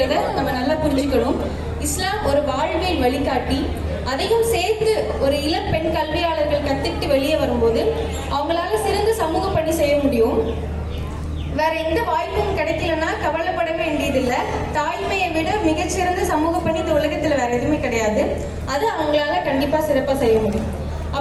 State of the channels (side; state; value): both; identical; correlation 1.00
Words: நம்ம நல்லா புரிஞ்சுக்கணும். இஸ்லாம் ஒரு வாழ்வியல் வழிகாட்டி. அதையும் சேர்த்து ஒரு இளம் பெண் கல்வியாளர்கள் கத்துக்கிட்டு வெளியே வரும்போது அவங்களால சிறந்த சமூக பணி செய்ய முடியும். வேற எந்த வாய்ப்பும் கிடைக்கலன்னா கவலைப்பட வேண்டியதில்லை. தாய்மையை விட மிகச்சிறந்த சமூக பணி இந்த உலகத்துல வேற எதுவுமே கிடையாது. அது அவங்களால கண்டிப்பா சிறப்பா செய்ய முடியும்.